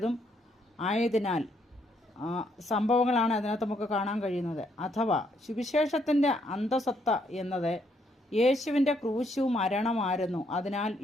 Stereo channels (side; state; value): both; normal; correlation 0.72